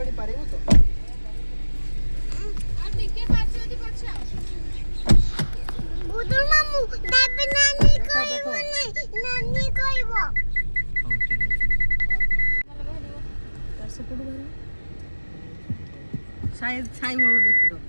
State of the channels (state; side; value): inverted; both; correlation -1.00